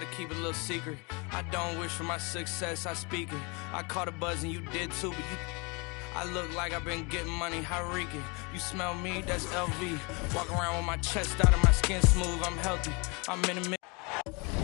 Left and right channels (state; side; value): quieter; right; 29.9 dB